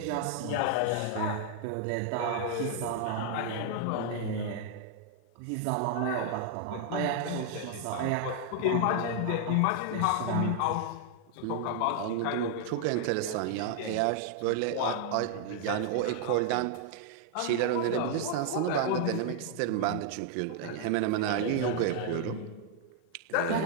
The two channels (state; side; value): different; both; correlation 0.00